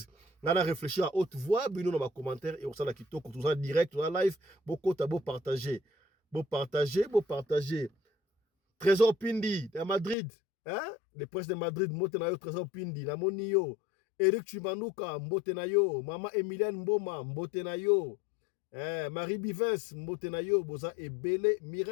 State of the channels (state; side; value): drops out; right; at 10.2 s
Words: na réfléchir à haute voix bino na ba commentaire et on sala kitoko tout ça direct tout ça live bokota partager Trésor Pindi à Madrid le prince de Madrid motena yo Trésor Pindi na monio Eric Chimanuka mbote na yo mama Emilienne Mboma mbote na yo Marie Bivens mbote na yo boza ebele